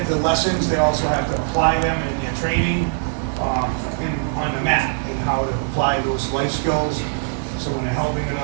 the lessons, they also have to apply them in their training on the mat, and how to apply those life skills. So when they're helping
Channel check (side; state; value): left; silent; 60 dB below the other